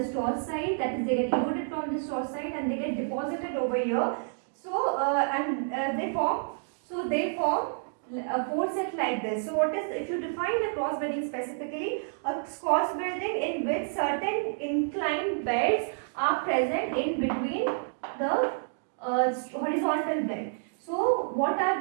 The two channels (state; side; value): silent; left; digital silence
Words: straw side, that is they get eroded from the straw side and they get deposited over here. So they form a four set like this. So what is, if you define the cross bedding specifically, a cross bedding in which certain inclined beds are present in between the horizontal bed. So what are